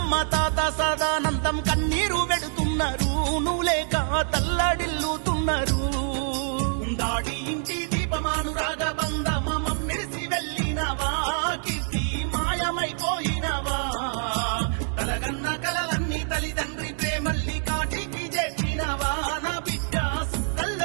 తాత సదానందం కన్నీరు పెడుతున్నారు, నువ్వు లేక తల్లడిల్లుతున్నారు. దాడి ఇంటి దీపమానురాగ బంధమ మమ్మిడిసి వెళ్ళినవా కీర్తి మాయమైపోయినవా, కలగన్న కలలన్నీ తల్లిదండ్రి ప్రేమల్ని కాటికి చేసినవా, నా బిడ్డ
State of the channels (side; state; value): left; silent; 61 dB below the other